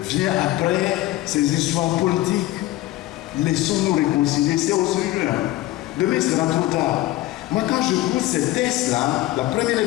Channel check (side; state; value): right; quieter; 16.5 dB